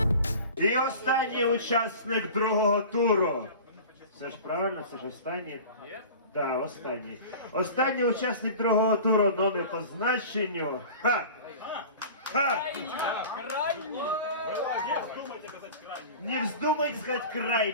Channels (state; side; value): inverted; both; correlation -0.38